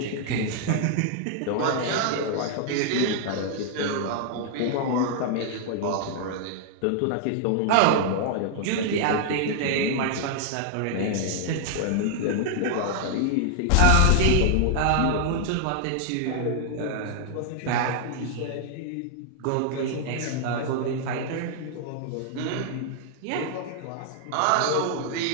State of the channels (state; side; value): different; both; correlation -0.01